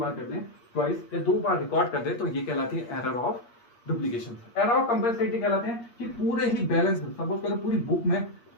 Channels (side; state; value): right; late; 8.5 ms